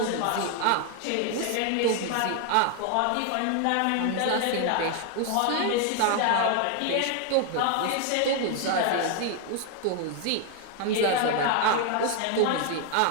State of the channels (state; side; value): different; both; correlation 0.00